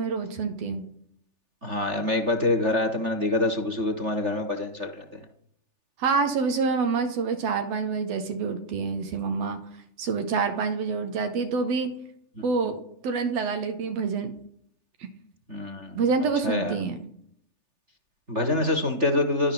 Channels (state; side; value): late; left; 3.4 ms